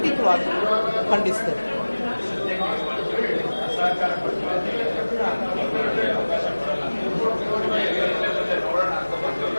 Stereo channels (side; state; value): both; inverted; correlation -1.00